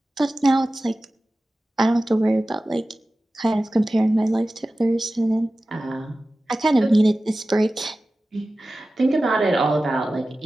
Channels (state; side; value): normal; both; correlation 0.96